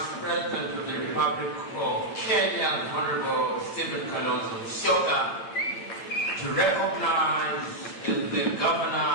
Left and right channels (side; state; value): right; late; 8.9 ms